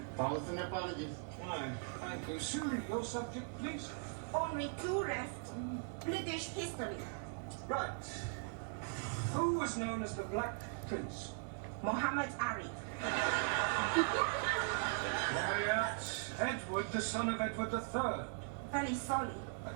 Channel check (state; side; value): silent; left; 51 dB below the other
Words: Thousand apologies. Fine. Thank you. Sue, your subject, please. Only two left. British history. Right. Who was known as the Black Prince? Muhammad Ali. Quiet. Edward, the son of Edward III. Very sorry. And